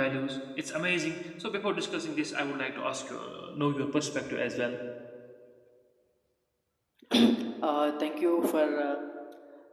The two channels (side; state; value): both; identical; correlation 1.00